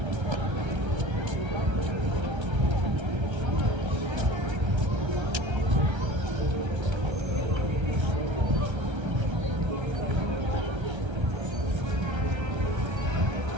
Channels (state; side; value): late; left; 1.3 ms